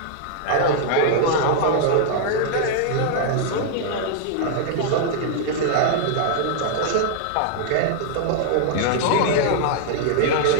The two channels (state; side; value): different; both; correlation -0.01